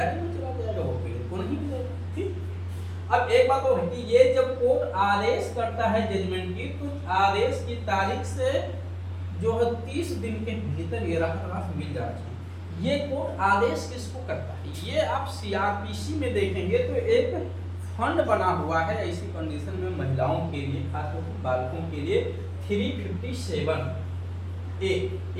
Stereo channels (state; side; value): identical; both; correlation 1.00